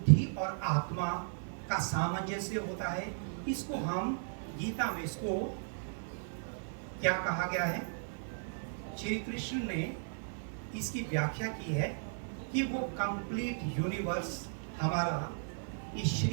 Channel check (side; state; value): left; silent; digital silence